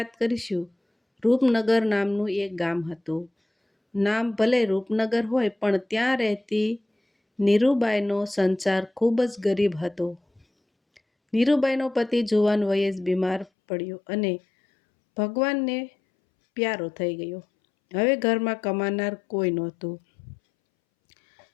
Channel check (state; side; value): drops out; right; at 13.5 s